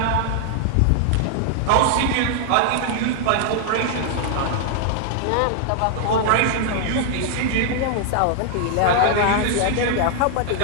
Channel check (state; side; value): different; both; correlation 0.00